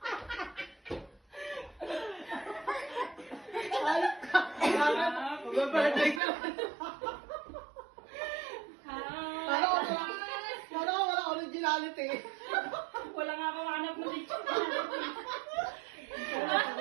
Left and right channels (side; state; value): left; drops out; at 6.2 s